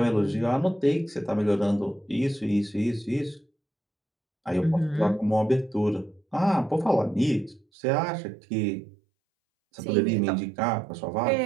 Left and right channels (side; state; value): left; drops out; at 7.7 s